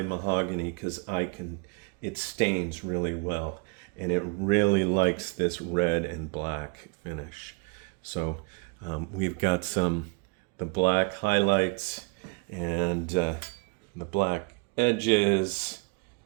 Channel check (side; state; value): left; quieter; 32.7 dB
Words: mahogany because it stains really well, and it really likes this red and black finish. So we've got the black highlights and the black edges